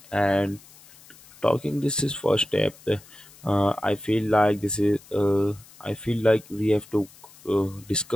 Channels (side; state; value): left; noise; hiss, 23 dB below the sound